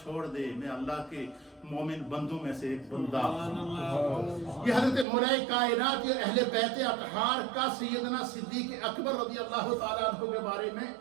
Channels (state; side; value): drops out; left; at 5.1 s